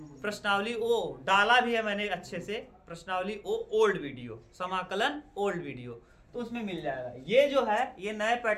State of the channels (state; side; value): identical; both; correlation 1.00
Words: प्रश्नावली ओ डाला भी है मैंने अच्छे से, प्रश्नावली ओ ओल्ड वीडियो, समाकलन ओल्ड वीडियो, तो उसमें मिल जाएगा। ये जो है ये नए